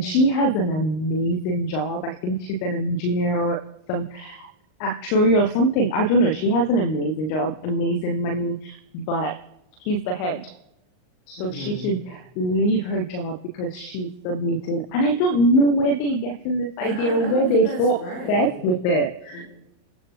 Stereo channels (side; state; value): right; late; 39 ms